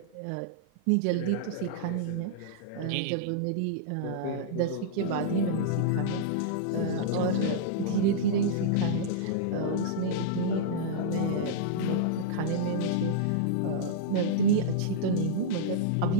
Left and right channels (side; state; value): both; different; correlation -0.02